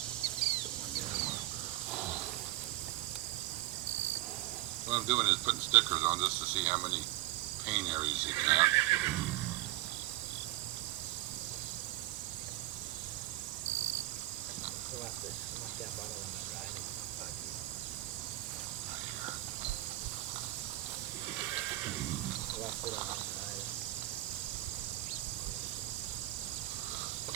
one down. What I'm doing is putting stickers on just to see how many pain areas you can have. We'll have to have bottle on that ride. We'll have to sit on that ride.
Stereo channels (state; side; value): quieter; left; 16.9 dB